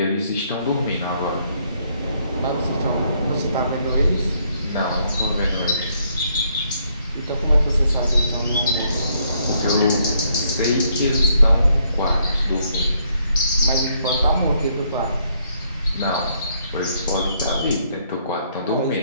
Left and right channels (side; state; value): both; inverted; correlation -0.72